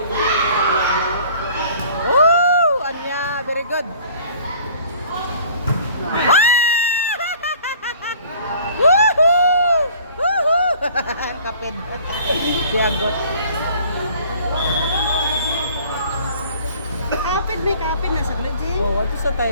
Anya, very good. Woohoo! Woohoo! Kapit. Siagot. Kapit, may kapit. Nasa Glodji. Oh, ato sa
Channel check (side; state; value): both; inverted; correlation -0.51